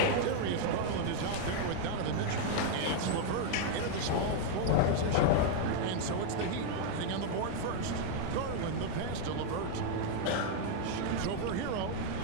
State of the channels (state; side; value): different; both; correlation 0.00